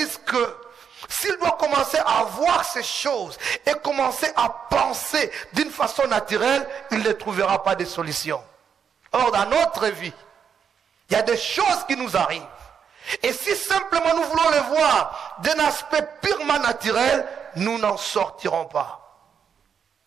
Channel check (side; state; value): left; quieter; 7.3 dB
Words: que s'il doit commencer à voir ces choses et commencer à penser d'une façon naturelle, il ne trouvera pas de solution. Or, dans notre vie, il y a des choses qui nous arrivent. Et si simplement nous voulons les voir d'un aspect purement naturel, nous n'en sortirons pas.